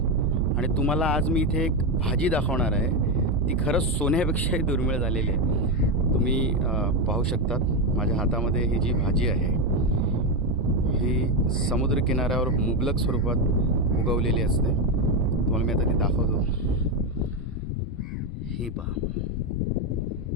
आणि तुम्हाला आज मी इथे एक भाजी दाखवणार आहे. ती खरंच सोन्यापेक्षाही दुर्मिळ झालेली आहे. तुम्ही पाहू शकतात माझ्या हातामध्ये ही जी भाजी आहे ही समुद्रकिनाऱ्यावर मुबलक स्वरूपात उगवलेली असते. तुम्हाला मी आता ती दाखवतो. ही पहा,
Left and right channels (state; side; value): normal; both; correlation 0.09